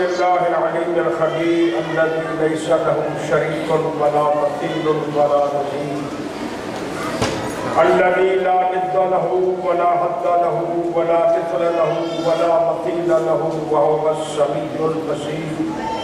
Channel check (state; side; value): identical; both; correlation 1.00